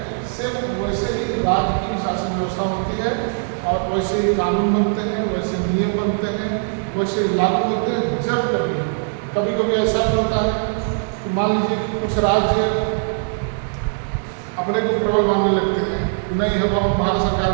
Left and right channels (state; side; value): silent; left; digital silence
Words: सिर्फ वैसे ही राज्य की शासन व्यवस्था होती है और वैसे ही कानून बनते हैं, वैसे नियम बनते हैं, वैसे लागू होते हैं। जब कभी कभी ऐसा भी होता है कि मान लीजिए कि कुछ राज्य अपने को प्रबल मानने लगते हैं, नहीं है हम भारत सरकार